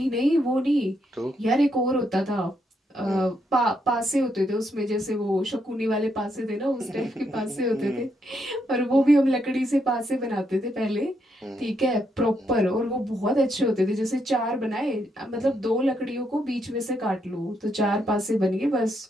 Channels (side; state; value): both; normal; correlation 0.78